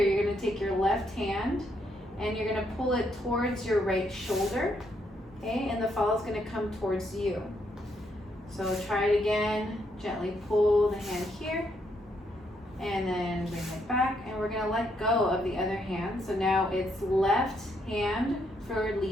you're gonna take your left hand and you're gonna pull it towards your right shoulder, okay? And the follow is gonna come towards you. So try it again, gently pull the hand here, and then bring it back, and we're gonna let go of the other hand. So now it's left hand for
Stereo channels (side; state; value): both; normal; correlation 0.75